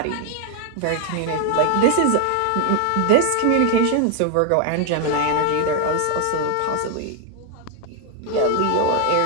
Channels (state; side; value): different; both; correlation 0.00